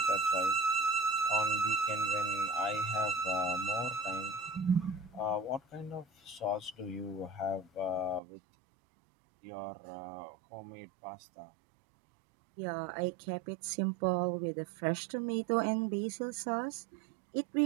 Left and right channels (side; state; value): left; drops out; at 8.2 s